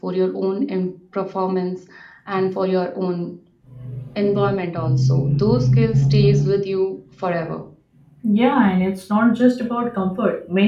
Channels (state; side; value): identical; both; correlation 1.00